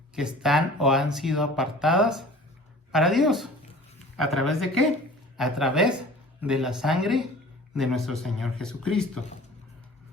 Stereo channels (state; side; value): normal; both; correlation 0.44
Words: que están o han sido apartadas para Dios. ¿A través de qué? A través de la sangre de nuestro Señor Jesucristo.